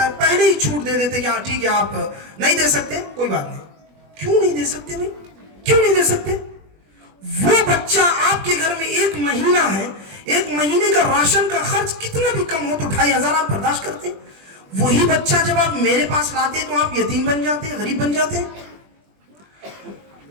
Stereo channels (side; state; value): left; late; 20 ms